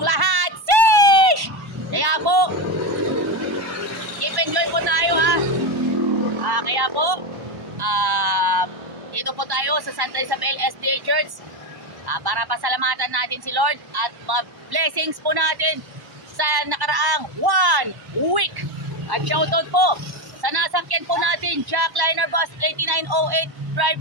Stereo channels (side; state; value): left; late; 1.1 ms